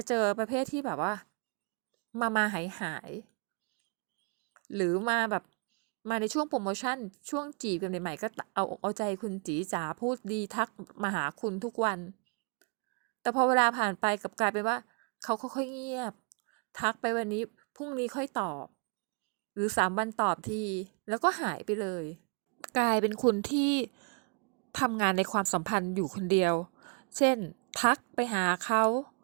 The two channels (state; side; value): quieter; left; 36.6 dB